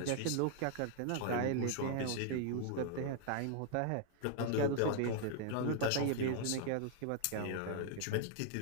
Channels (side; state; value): both; different; correlation 0.00